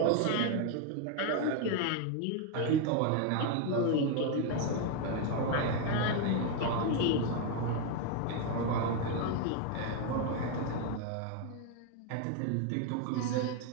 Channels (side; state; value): both; different; correlation 0.01